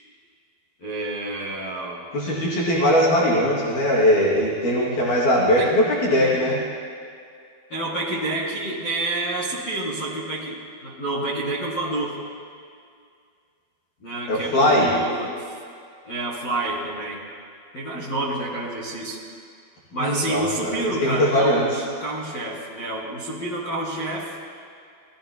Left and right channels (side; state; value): right; late; 12 ms